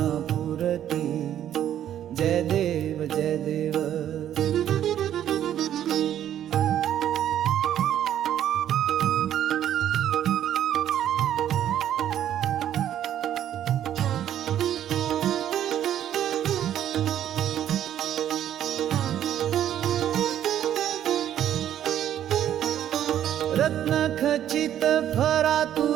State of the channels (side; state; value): left; quieter; 10.9 dB